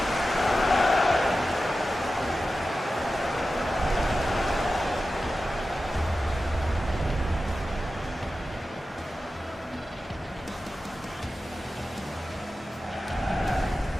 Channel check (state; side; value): normal; both; correlation 0.93